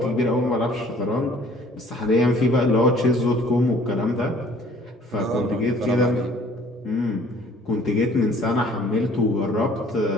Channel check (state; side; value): normal; both; correlation 0.55